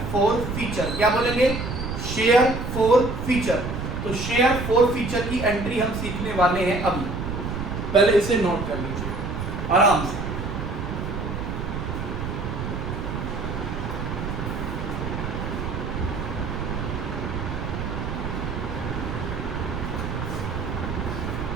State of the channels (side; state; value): right; noise; rumble, 4 dB below the sound